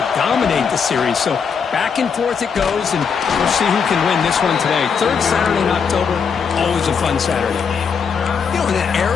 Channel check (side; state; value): right; quieter; 6.3 dB